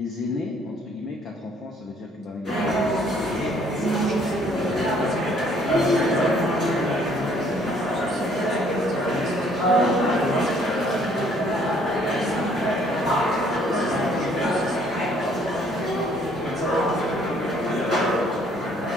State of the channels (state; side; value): normal; both; correlation 0.62